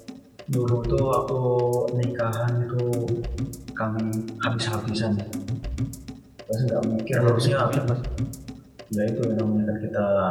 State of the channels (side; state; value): both; identical; correlation 1.00